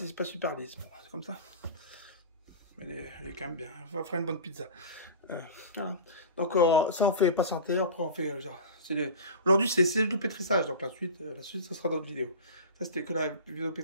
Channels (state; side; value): inverted; both; correlation -0.32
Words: pas super lisse. Bon, c'est comme ça. Mais elle est quand même bien. On va faire une bonne pizza. Voilà. Donc, ça, on fait patienter. Après, on fait... Aujourd'hui, c'est le pétrissage. Donc, la suite, ça sera dans d'autres vidéos. Ça, c'était que la vidéo